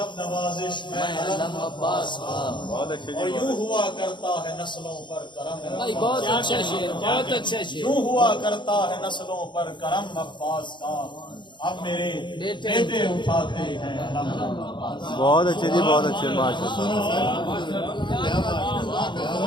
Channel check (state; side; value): late; right; 0.23 ms